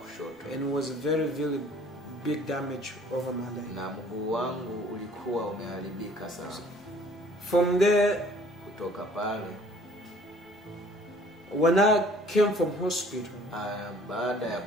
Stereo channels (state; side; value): normal; both; correlation 0.55